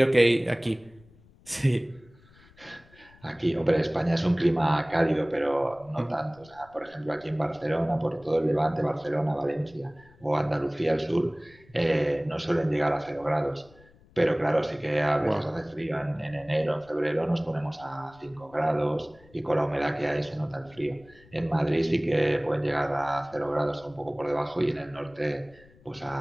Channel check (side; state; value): left; noise; rumble, 27 dB below the sound